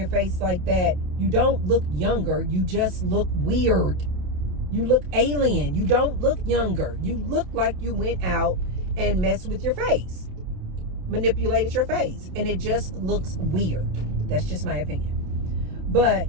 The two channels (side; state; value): left; late; 27 ms